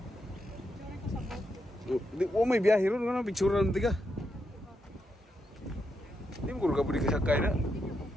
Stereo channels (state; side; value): normal; both; correlation 0.83